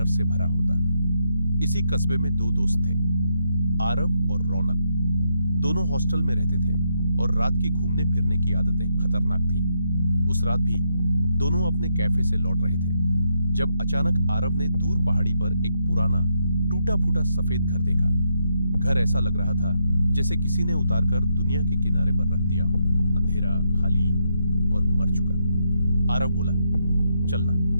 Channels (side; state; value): both; inverted; correlation -0.78